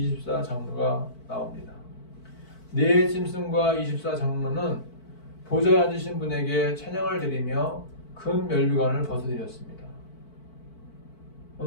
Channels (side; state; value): right; late; 4.5 ms